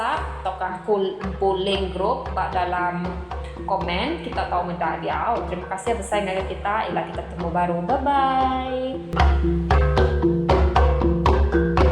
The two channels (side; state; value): both; identical; correlation 1.00